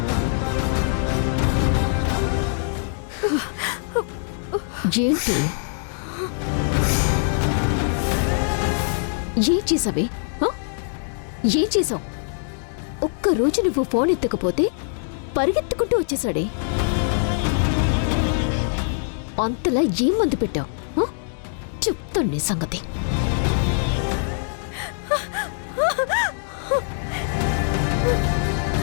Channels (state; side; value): silent; right; digital silence